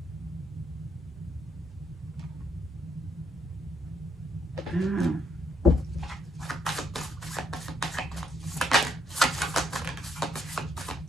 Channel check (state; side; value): normal; both; correlation 0.74